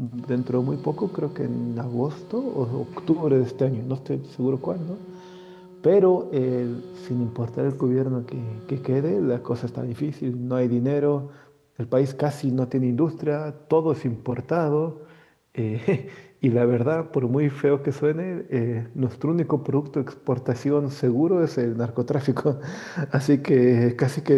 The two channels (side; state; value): both; identical; correlation 1.00